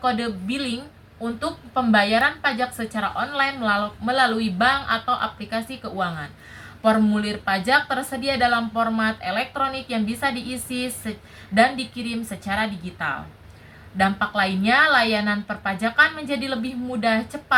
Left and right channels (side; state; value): both; identical; correlation 1.00